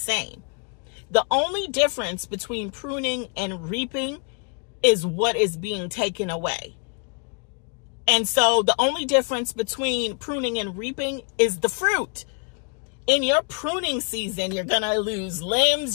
The only difference between pruning and reaping is what is being taken away. And so the only difference between pruning and reaping is the fruit. In your pruning season, you're going to lose limbs.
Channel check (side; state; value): right; quieter; 38.8 dB